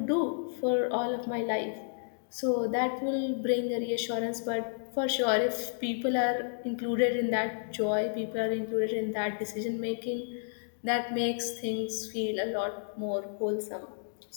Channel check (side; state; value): right; silent; digital silence